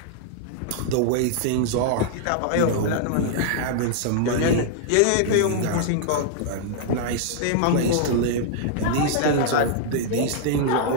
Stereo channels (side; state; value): both; different; correlation -0.01